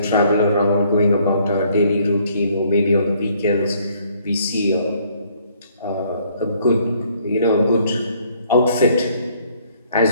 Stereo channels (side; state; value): both; inverted; correlation -0.64